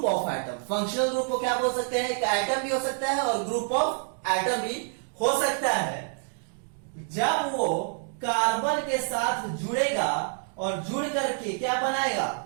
of atom. Functional group को क्या बोल सकते हैं, एक एटम भी हो सकता है और ग्रुप ऑफ एटम भी हो सकता है, जब वो कार्बन के साथ जुड़ेगा और जुड़ करके क्या बनाएगा,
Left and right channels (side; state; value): left; silent; digital silence